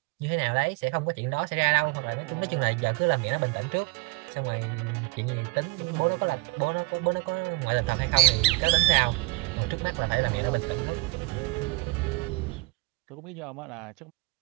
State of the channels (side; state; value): left; quieter; 23.8 dB